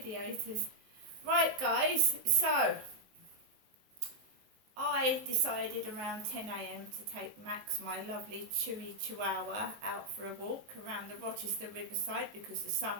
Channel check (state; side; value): late; left; 19 ms